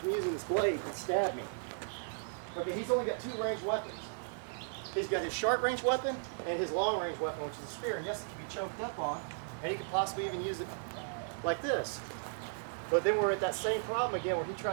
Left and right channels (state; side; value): silent; left; digital silence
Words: using this blade and stab me. Okay, he's only got two ranged weapons. He's got his short range weapon and his long range weapon, which is a spear. And yes, it can be choked up on, and he could possibly even use it like this. But then we're at that same problem again where he